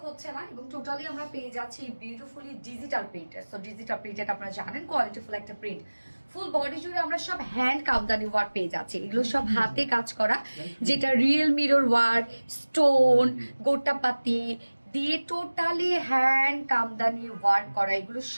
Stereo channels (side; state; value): both; inverted; correlation -1.00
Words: হচ্ছে না। এবং টোটালি আমরা পেয়ে যাচ্ছি বিউটিফুলি ডিজিটাল প্রিন্টের। সো ডিজিটাল প্রিন্টেড আপনারা জানেন কোয়ালিটিফুল একটা প্রিন্ট। ফুল বডি জুড়ে আমরা সব হ্যান্ড কামদানি ওয়ার্ক পেয়ে যাচ্ছি। এগুলো সব হাতে কাজ করা, যেটা রিয়েল মিরর ওয়ার্ক, স্টোন, গোটাপাতি দিয়ে টোটালি হ্যান্ড কামদানি ওয়ার্ক করা, এগুলো